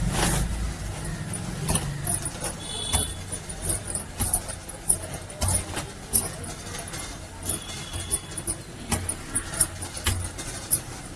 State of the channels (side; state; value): both; identical; correlation 1.00